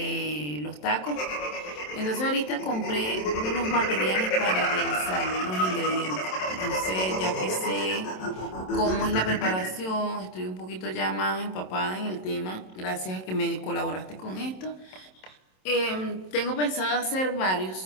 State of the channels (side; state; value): right; late; 27 ms